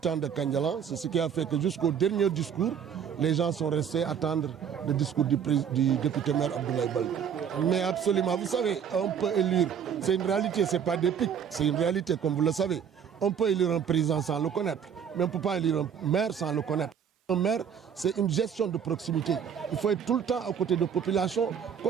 de Karniala, c'est ce qui a fait que jusqu'au dernier discours, les gens sont restés attendre le discours du député maire Abdoulaye Baldé. Mais absolument, vous savez, on peut élire, c'est une réalité, ce n'est pas des pics, c'est une réalité comme vous le savez. On peut élire un président sans le connaître, mais on ne peut pas élire un maire sans le connaître. Un maire, c'est une gestion de proximité. Il faut être tout le temps à côté de la population,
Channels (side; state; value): left; quieter; 7.8 dB